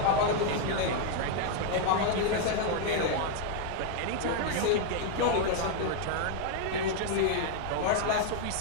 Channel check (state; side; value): different; both; correlation 0.00